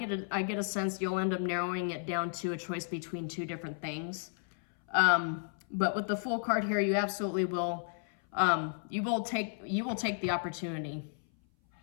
a sense you'll end up narrowing it down to a choice between two different things. But with the Fool card here, you absolutely will. You will take the opportunity.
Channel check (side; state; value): right; silent; 56 dB below the other